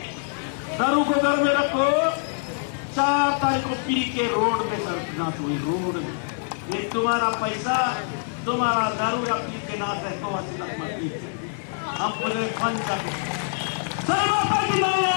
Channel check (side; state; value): right; silent; 62 dB below the other